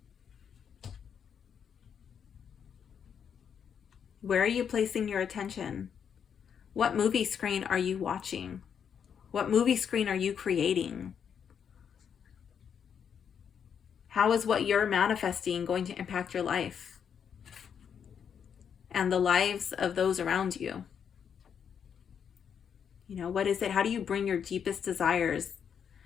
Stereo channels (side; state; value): right; quieter; 7.6 dB